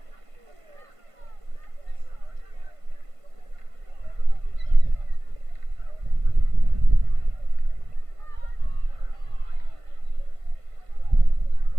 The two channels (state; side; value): late; left; 1.5 ms